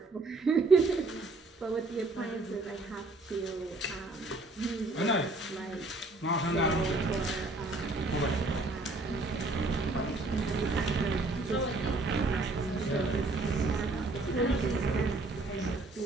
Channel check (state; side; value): quieter; left; 3.1 dB